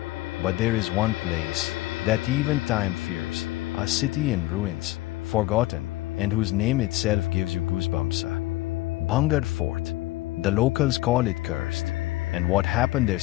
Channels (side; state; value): right; quieter; 18.0 dB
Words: But there is one place that even time fears, a city in ruins, forgotten, and whose name itself gives you goosebumps. Bhangarh Fort. The locals call it cursed, and what happened there